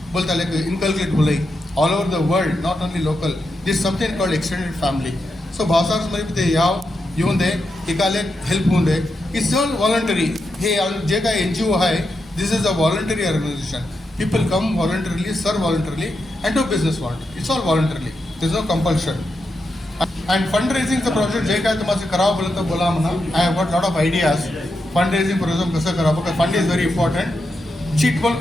बोलता इनकल्केट होलंय all over the world, not only local. This something called extended family. So भावसारमध्ये ते येऊन दे, एकाला हेल्प होऊन दे. It's all voluntary. हे जे काय NGO आहे, this is a voluntary organisation. People come voluntarily, सर्व voluntarily and do business voluntary. It's all voluntarily. This no compulsion. And fund रेझिंगचं प्रोजेक्ट जे काय तुम्हाला करावं बोललं तर बोला म्हणा. I have got lot of ideas. Fund raising program कसं करावं, कारण fund is very important. Cheat पण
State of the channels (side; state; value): both; normal; correlation 0.86